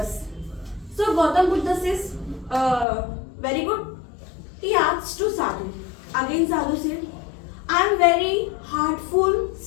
So Gautam Buddha says, very good. He asked to Sadhu. Again Sadhu said, I am very heartful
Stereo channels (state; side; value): drops out; right; at 2.9 s